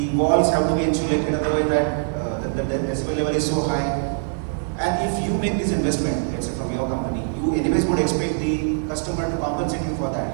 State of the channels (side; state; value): left; silent; digital silence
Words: walls have to be insulated in a way that the decibel level is so high. And if you make this investment, let's say from your company, you anyways would expect the customer to compensate you for